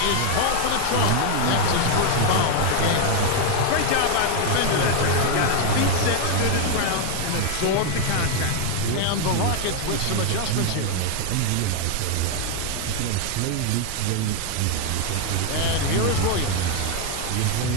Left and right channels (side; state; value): both; different; correlation 0.01